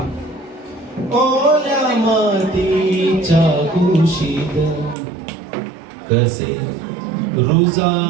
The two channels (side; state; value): left; drops out; at 5.0 s